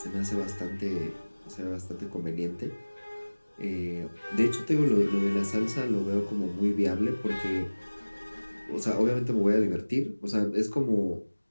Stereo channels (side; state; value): both; inverted; correlation -1.00